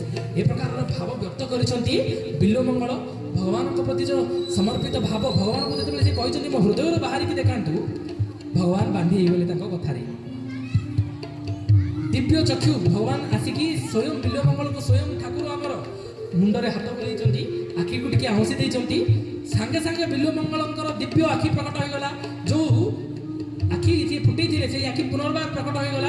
ଏ ପ୍ରକାରର ଭାବ ବ୍ୟକ୍ତ କରିଛନ୍ତି ବିଲ୍ୱମଙ୍ଗଳ। ଭଗବାନଙ୍କ ପ୍ରତି ଯେଉଁ ସମର୍ପିତ ଭାବ, ଭଗବାନଙ୍କୁ ଯେତେବେଳେ ସେ କହିଛନ୍ତି ମୋ ହୃଦୟରୁ ବାହାରିକି ଦେଖାନ୍ତୁ, ଭଗବାନ ବାନ୍ଧି ହେଇଗଲେ ତାଙ୍କ କଥାରେ। ଦିବ୍ୟ ଚକ୍ଷୁ ଭଗବାନ ଆସିକି ସ୍ୱୟଂ ବିଲ୍ୱମଙ୍ଗଳଙ୍କୁ, ସ୍ୱୟଂ ଠାକୁର ଆମର ମୁଣ୍ଡରେ ହାତ ବୁଲେଇଛନ୍ତି, ଆଖିକୁ ଟିକେ ଆଉଁସି ଦେଇଛନ୍ତି। ସାଙ୍ଗେ ସାଙ୍ଗେ ବିଲ୍ୱମଙ୍ଗଳଙ୍କର ଦିବ୍ୟ ଆଖି ପ୍ରକଟ ହୋଇଗଲା। ଯେଉଁ ଆଖି ଯିଏ ଫୁଟେଇଥିଲେ ସେଇ ଆଖି ପୁନର୍ବାର ପ୍ରକଟ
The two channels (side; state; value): both; identical; correlation 1.00